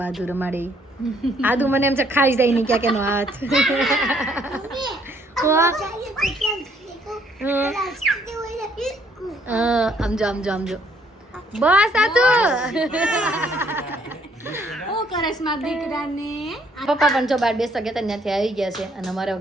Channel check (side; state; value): both; normal; correlation 0.66